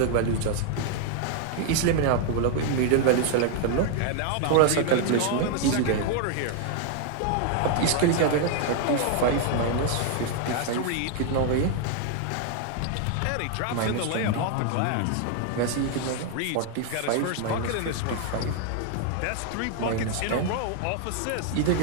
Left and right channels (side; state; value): both; different; correlation 0.00